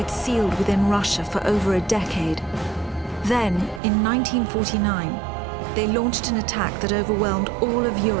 sealed within Russia for over a decade. Then, in 1949, they launched an attack that overwhelmed all of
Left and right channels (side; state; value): left; drops out; at 3.8 s